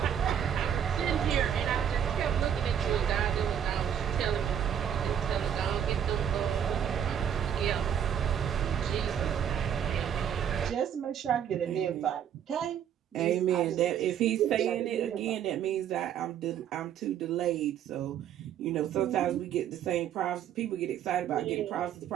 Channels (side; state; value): left; quieter; 9.2 dB